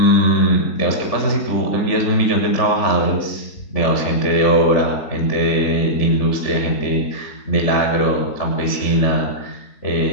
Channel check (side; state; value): right; late; 3.5 ms